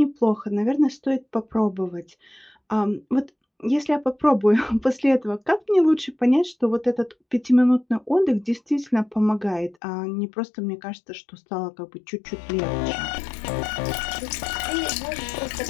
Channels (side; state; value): right; drops out; at 9.8 s